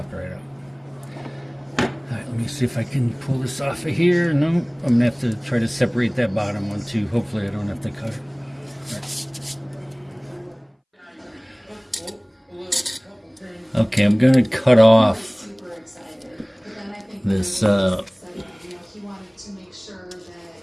right out. Alright, let me see if I can pull this off of here. No, I'm going to have to try to separate that bottom one too. Hopefully I don't have to cut it. Right. Okay, I'm going to cut off this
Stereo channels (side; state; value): both; identical; correlation 1.00